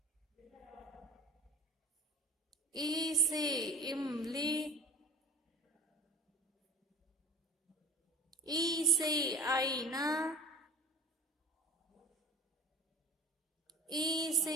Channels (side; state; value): both; normal; correlation 0.39